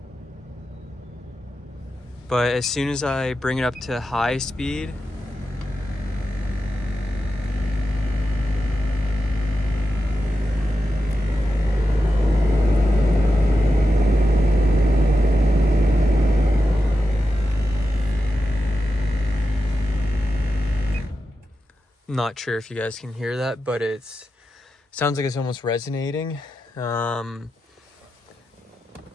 But as soon as I bring it up to high speed, not sure if you guys can hear that, but sounds like it's almost resonating.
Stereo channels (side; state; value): both; normal; correlation 0.90